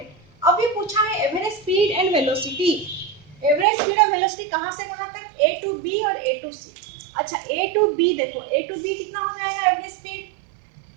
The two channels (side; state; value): left; drops out; at 3.7 s